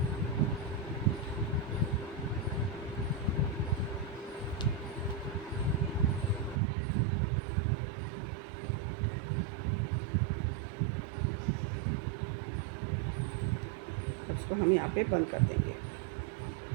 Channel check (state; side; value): drops out; left; at 6.6 s